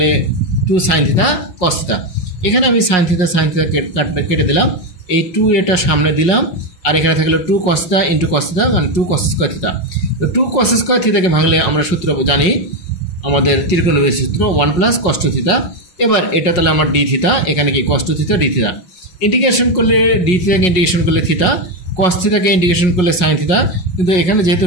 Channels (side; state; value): right; late; 5.5 ms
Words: 2 সাইন থিতা কস থিতা। এখানে আমি সাইন থিতা কেটে দিলাম, এই 2a সামনে দিলাম, আর এখানে থাকলো 2 কস থিতা ইন্টু কস থিতা মানে 2 কস স্কোয়ার থিতা। তো 2 কস স্কোয়ার থিতাকে ভাঙলে আমরা সূত্র জানি, আমাদের ত্রিকোণমিতির সূত্র 1 প্লাস কস 2 থিতা। এবার এটা তাহলে আমার ডি থিতা, এখানে কি কস 2 থিতা ডি থিতা। ইন্টিগ্রেশন করলে ডি থিতাকে ইন্টিগ্রেশন করলে থিতা, কস থিতাকে ইন্টিগ্রেশন করলে সাইন থিতা, কিন্তু এখানে যেহেতু